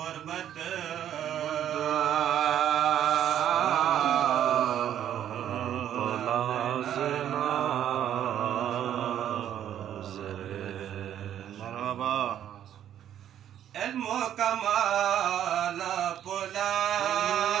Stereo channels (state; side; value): quieter; left; 10.5 dB